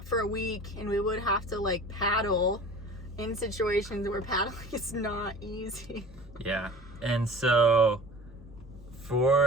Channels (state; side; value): normal; both; correlation 0.41